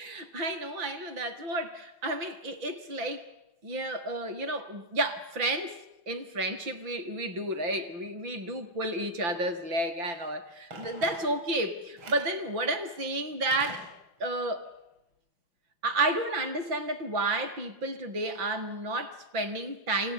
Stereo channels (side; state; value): left; late; 5.9 ms